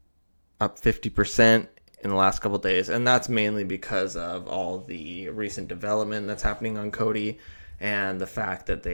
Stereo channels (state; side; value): inverted; both; correlation -1.00